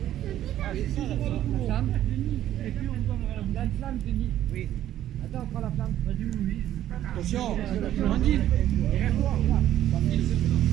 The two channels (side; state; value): left; quieter; 12.2 dB